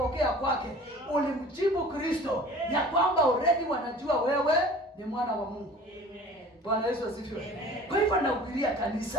kwake, ulimjibu Kristo ya kwamba already wanajua wewe ni mwana wa Mungu. Bwana Yesu asifiwe. Kwa hivyo nahubiria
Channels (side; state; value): both; normal; correlation 0.45